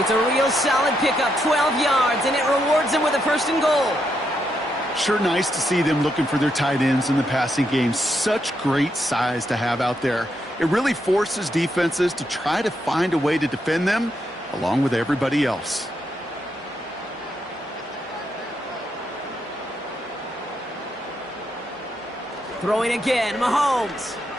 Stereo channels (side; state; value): both; normal; correlation 0.80